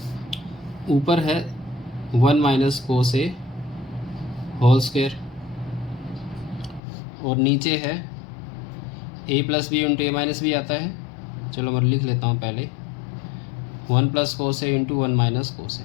ऊपर है 1 माइनस कोसे होल स्क्वायर, और नीचे है a plus B into A minus B आता है, चलो मैं लिख लेता हूँ पहले, 1 प्लस कोसे इंटू 1 माइनस कोसे,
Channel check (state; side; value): drops out; right; at 6.8 s